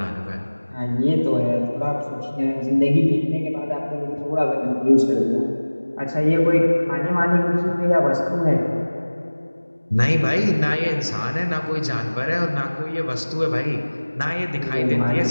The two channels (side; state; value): both; inverted; correlation -1.00